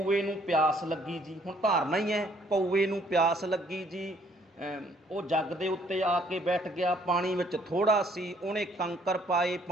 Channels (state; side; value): normal; both; correlation 0.63